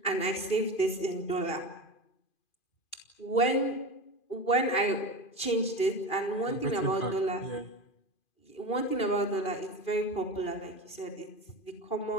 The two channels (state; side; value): late; right; 2.4 ms